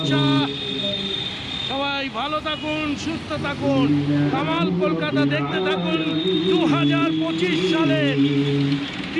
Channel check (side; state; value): both; identical; correlation 1.00